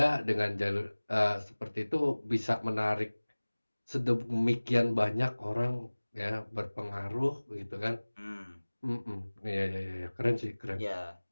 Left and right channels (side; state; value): both; inverted; correlation -1.00